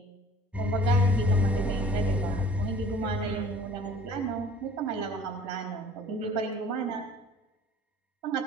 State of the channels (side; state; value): both; normal; correlation 0.50